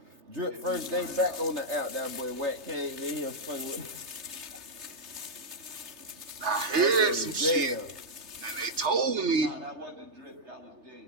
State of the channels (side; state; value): left; late; 3.3 ms